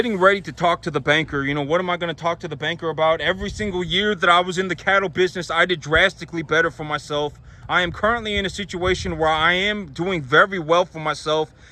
ready to talk to the banker. What am I going to talk to the banker about? Every single year that I was in the cattle business, I did drastically better for myself. I am currently in a situation where I am doing very well for myself.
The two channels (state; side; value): identical; both; correlation 1.00